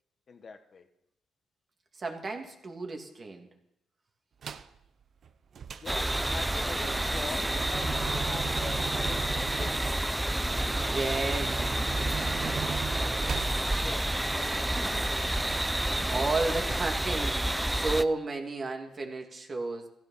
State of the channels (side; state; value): both; normal; correlation 0.97